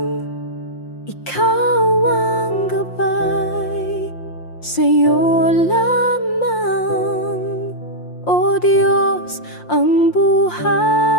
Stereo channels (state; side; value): late; right; 5.7 ms